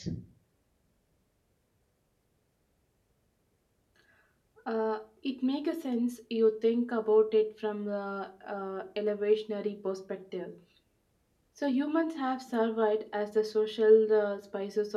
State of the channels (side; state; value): both; identical; correlation 1.00